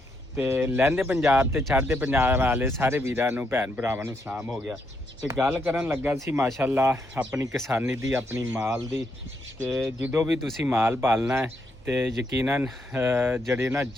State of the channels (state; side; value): normal; both; correlation 0.78